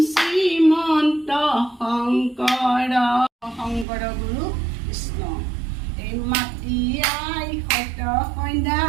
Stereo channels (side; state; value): left; drops out; at 3.9 s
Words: কৃষ্ণ এই মাটি আই সত সন্ধ্যা